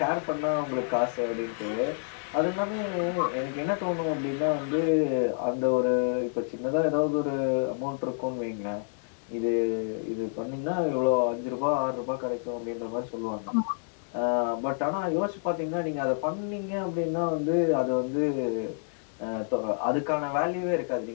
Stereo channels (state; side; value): silent; right; digital silence